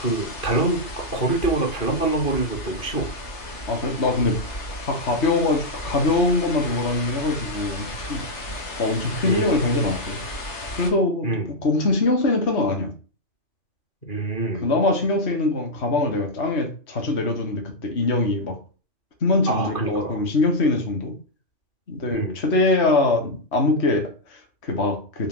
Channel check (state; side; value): late; right; 2.6 ms